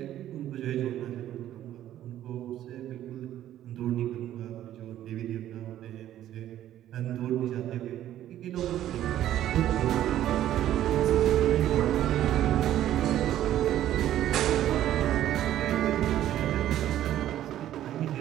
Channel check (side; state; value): left; quieter; 12.3 dB